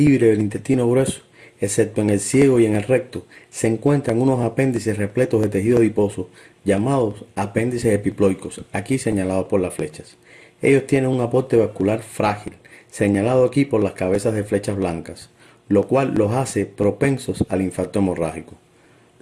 del intestino grueso, excepto en el ciego y en el recto, se encuentran unos apéndices repletos de tejido adiposo, llamados apéndices epiploicos, aquí señalados por las flechas. Ellos tienen un aporte vascular frágil, señalado aquí por las cabezas de flechas blancas, lo cual los hace propensos al infarto hemorrágico.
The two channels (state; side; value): identical; both; correlation 1.00